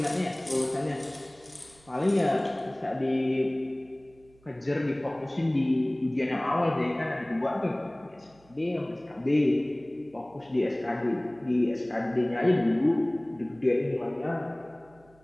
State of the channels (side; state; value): right; noise; hum, 29 dB below the sound